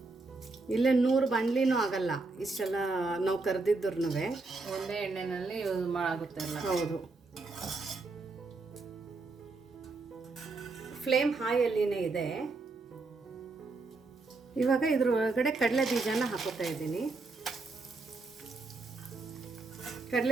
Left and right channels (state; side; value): quieter; left; 3.6 dB